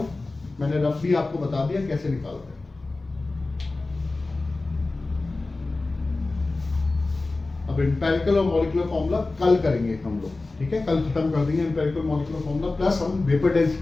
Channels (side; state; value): right; quieter; 3.3 dB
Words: मैंने रफ भी आपको बता दिया कैसे निकालते हैं। अब एम्पेरिकल और मॉलिक्यूलर फॉर्मूला कल करेंगे हम लोग। ठीक है, कल खत्म कर देंगे एम्पेरिकल मॉलिक्यूलर फॉर्मूला, प्लस हम वेपर